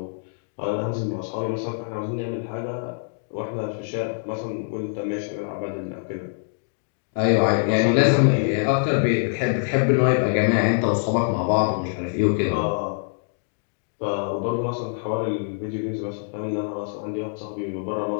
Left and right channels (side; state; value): right; silent; digital silence